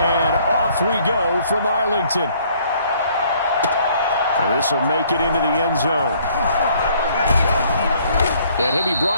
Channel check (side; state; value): both; inverted; correlation -0.62